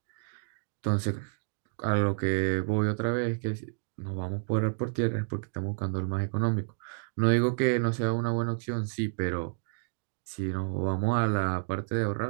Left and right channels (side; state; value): left; silent; digital silence